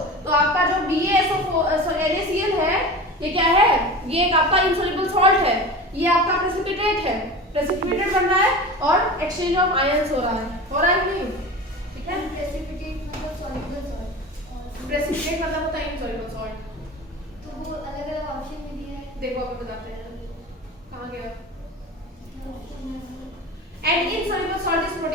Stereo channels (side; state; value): both; normal; correlation 0.32